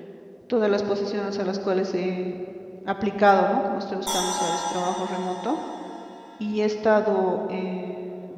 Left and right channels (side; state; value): both; identical; correlation 1.00